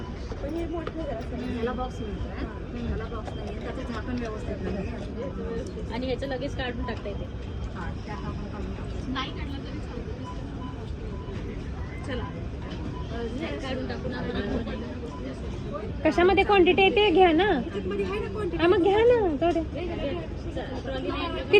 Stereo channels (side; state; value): both; identical; correlation 1.00